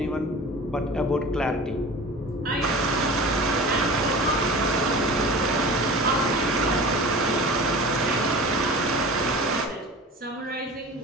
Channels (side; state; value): both; normal; correlation 0.37